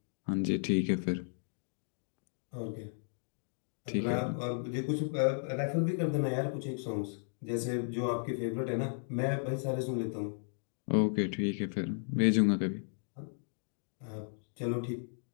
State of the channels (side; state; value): right; silent; digital silence